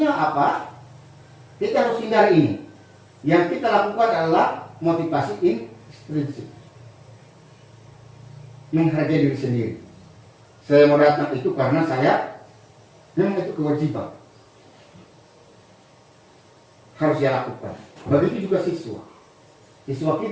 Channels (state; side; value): identical; both; correlation 1.00